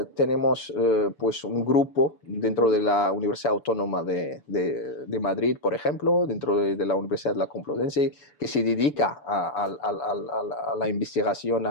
tenemos pues un grupo dentro de la Universidad Autónoma de Madrid, por ejemplo, dentro de la Universidad de la Complutense, que se dedica a la investigación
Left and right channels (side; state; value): right; late; 6.9 ms